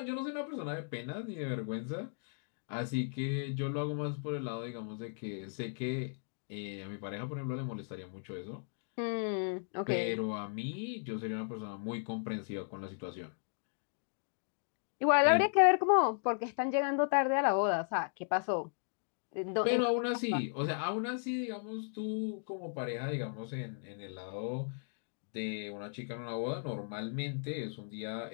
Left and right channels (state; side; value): silent; right; digital silence